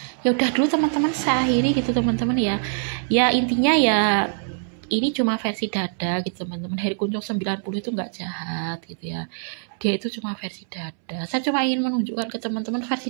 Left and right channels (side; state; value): left; silent; 63 dB below the other